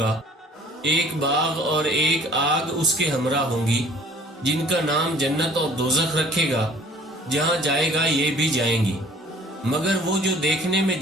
ایک باغ اور ایک آگ اس کے ہمراہ ہوں گی، جن کا نام جنت اور دوزخ رکھے گا۔ جہاں جائے گا یہ بھی جائیں گی، مگر وہ جو دیکھنے میں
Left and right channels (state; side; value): normal; both; correlation 0.53